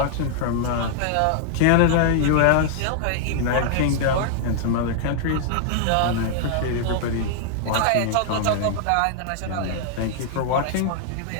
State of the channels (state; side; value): different; both; correlation 0.00